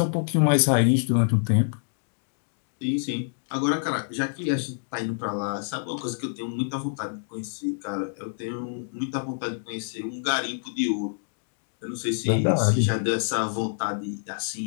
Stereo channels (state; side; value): silent; right; digital silence